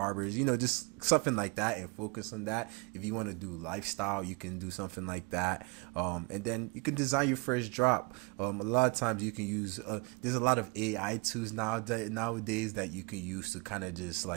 just something like that, and focus on that. If you want to do lifestyle, you can do something like that, and then you can design your first drop. A lot of times you can use there's a lot of AI tools nowadays that you can use to kind of just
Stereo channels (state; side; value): quieter; left; 29.6 dB